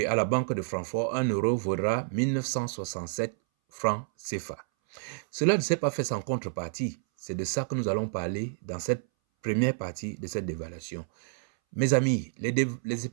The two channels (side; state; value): left; silent; 58 dB below the other